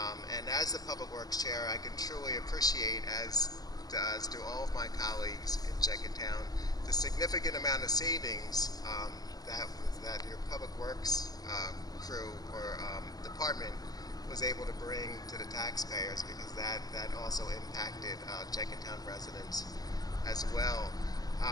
And as the Public Works Chair, I can truly appreciate, as do all of my colleagues in Jenkintown, the significant amount of savings that your Public Works crew or department was able to bring to the taxpayers, because that also impacted Jenkintown residents as well.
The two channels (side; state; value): right; late; 0.18 ms